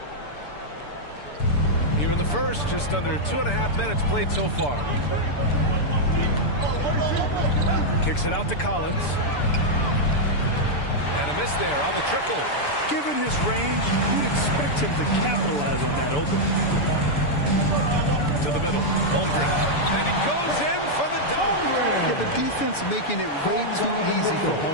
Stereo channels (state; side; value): late; right; 6.9 ms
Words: Here in the first, just under 2.5 minutes played so far. Kicks it out to Collins. And a miss there on the triple. Given his range, you'd expect him to capitalize on that opening. To the middle, Holmgren. And he goes in for the dunk. Yeah, the defense making it way too easy for